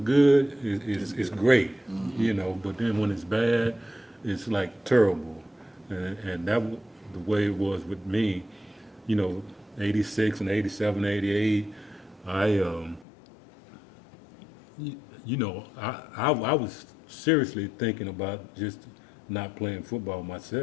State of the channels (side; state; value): right; drops out; at 13.1 s